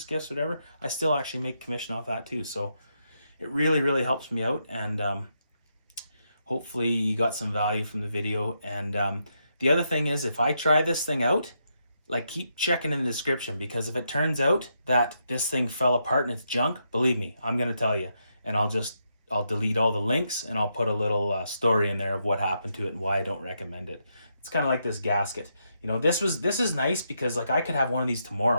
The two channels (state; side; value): inverted; both; correlation -0.81